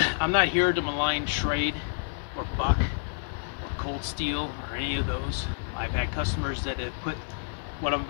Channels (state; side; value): silent; right; digital silence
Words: I'm not here to malign Schrade or Buck or Cold Steel or any of those. I've had customers that have put what I'm